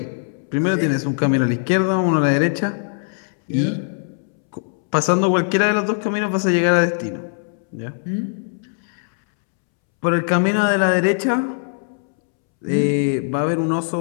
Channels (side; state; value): right; silent; 65 dB below the other